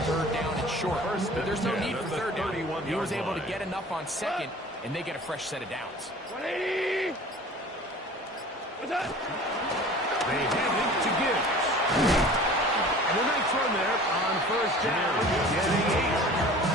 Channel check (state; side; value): normal; both; correlation 0.43